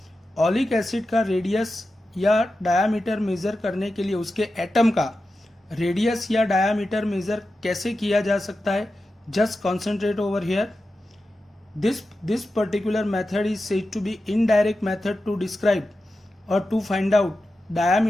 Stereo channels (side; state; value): both; normal; correlation 0.92